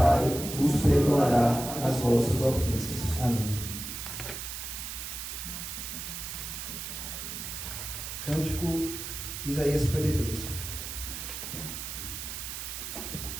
vos perdoará as vossas ofensas. Amém. Cântico Isaías 53.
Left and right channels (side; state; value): right; noise; hiss, 7 dB below the sound